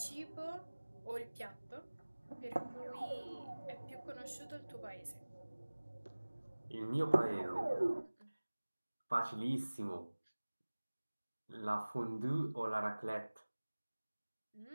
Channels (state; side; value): inverted; both; correlation -1.00